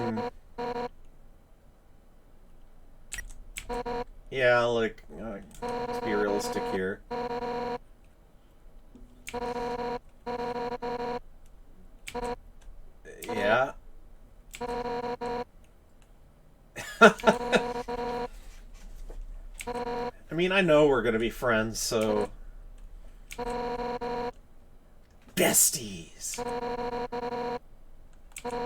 Yeah, like, let's be realistic here. Yeah. I mean, I know we're gonna be friends, so... Besties!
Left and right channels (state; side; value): identical; both; correlation 1.00